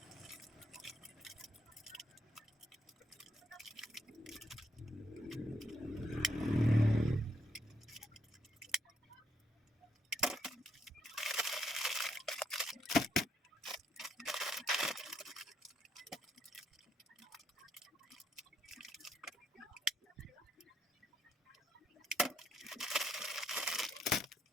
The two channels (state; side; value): normal; both; correlation 0.75